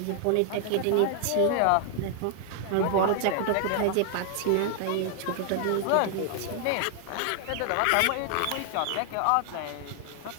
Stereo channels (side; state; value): both; different; correlation 0.00